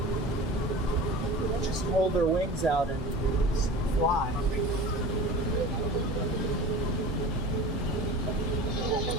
just hold their wings out and fly.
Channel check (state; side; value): normal; both; correlation 0.36